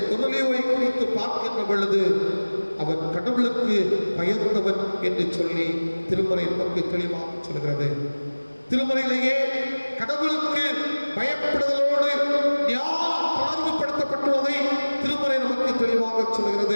கொர்நேலியுவை குறித்து பார்க்கின்ற பொழுது அவன் கடவுளுக்கு பயந்தவன் என்று சொல்லி திருமறை நமக்கு தெளிவாக சொல்கிறது. திருமறையிலேயே கடவுளுக்கு பயப்படுதலோடு ஞானம் தொடர்புபடுத்தப்பட்டுள்ளதை திருமறை நமக்கு தெளிவாக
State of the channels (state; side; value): inverted; both; correlation -1.00